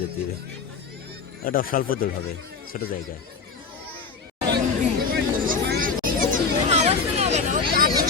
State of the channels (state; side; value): quieter; right; 5.0 dB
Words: যেতে হবে। ওটা স্বল্প দৌড় হবে, ছোট জায়গায়।